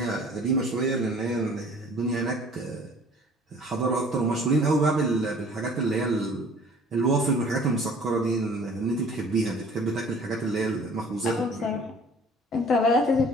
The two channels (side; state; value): both; normal; correlation 0.51